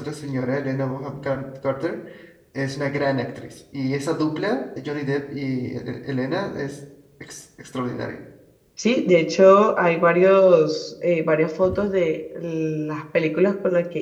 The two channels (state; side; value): identical; both; correlation 1.00